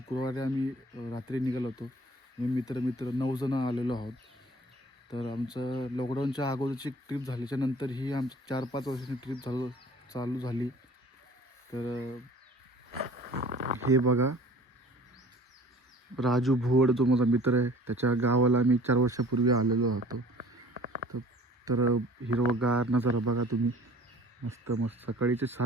आम्ही रात्री निघालो होतो. मी मित्र 9 जण आलेलो आहोत. तर आमचं लॉकडाऊनच्या अगोदरची ट्रिप झाल्याच्या नंतर ही आमची 4-5 वर्षाची ट्रिप चालू झाली. तर हे बघा, राजू भोवड जो माझा मित्र आहे त्याच्या गावाला मी 4 वर्षापूर्वी आलेलो होतो. तर हिरवगार नजारा बघा तुम्ही. मस्त मस्त सकाळीचे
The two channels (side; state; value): both; normal; correlation 0.49